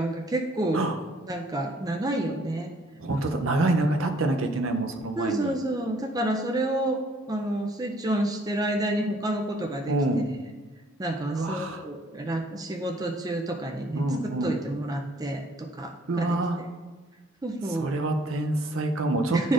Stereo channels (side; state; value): both; normal; correlation 0.61